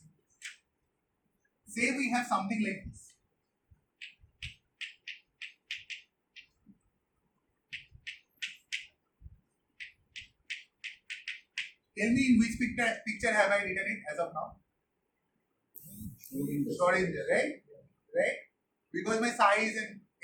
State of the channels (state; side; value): identical; both; correlation 1.00